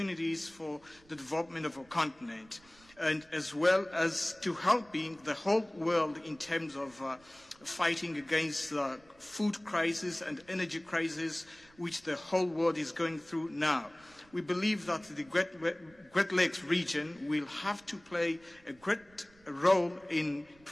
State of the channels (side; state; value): right; noise; rumble, 28 dB below the sound